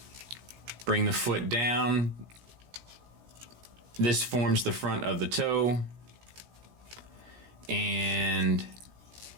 Bring the foot down. This forms the front of the toe. And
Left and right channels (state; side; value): late; left; 17 ms